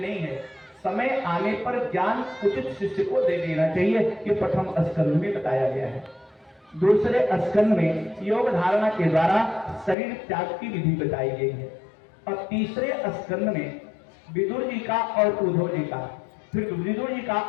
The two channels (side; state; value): right; drops out; at 10.0 s